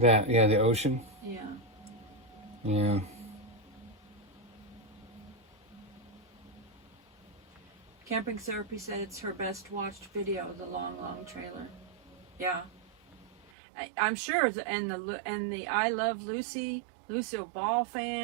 ocean. Yeah. Yeah. Camping Therapy said it's her best watched video, the long trailer. Yeah. I'm sure, and the I Love Lucy, Lucille Ball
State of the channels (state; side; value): drops out; left; at 13.5 s